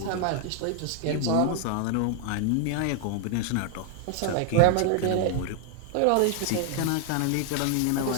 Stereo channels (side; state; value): both; different; correlation 0.00